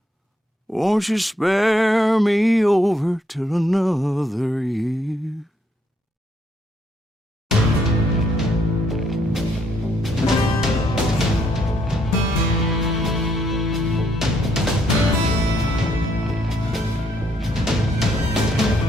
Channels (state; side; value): normal; both; correlation 0.72